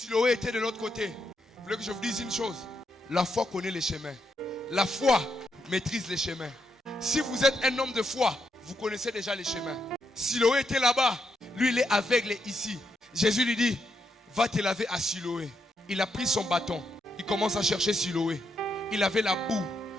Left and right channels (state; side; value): normal; both; correlation 0.80